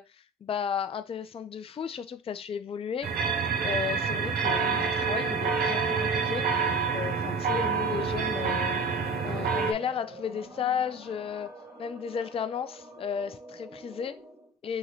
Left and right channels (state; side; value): normal; both; correlation 0.34